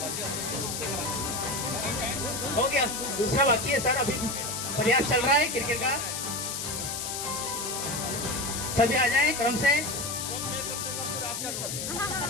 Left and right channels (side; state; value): left; noise; hiss, 4 dB below the sound